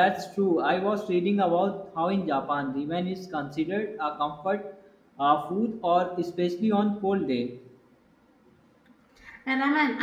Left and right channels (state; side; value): identical; both; correlation 1.00